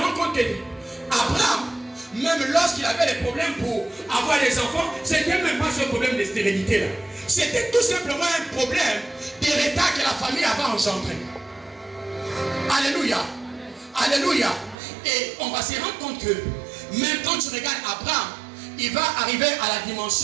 compte qu'Abraham, même lorsqu'il avait des problèmes pour avoir des enfants, c'était même pas ce problème de stérilité là. C'était tout simplement un problème d'héritage que la famille avait engendré. Alléluia. Alléluia. Et on va se rendre compte que même quand tu regardes Abraham, il va arriver à la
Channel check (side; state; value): left; drops out; at 14.8 s